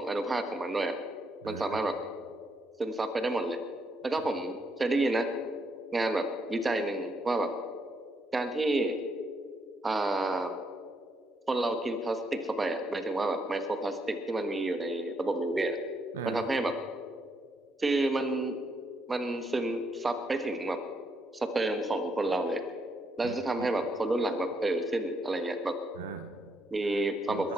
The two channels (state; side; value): normal; both; correlation 0.76